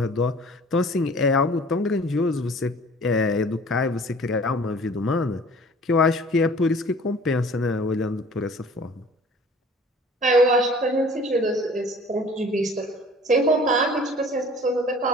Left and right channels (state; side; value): normal; both; correlation 0.48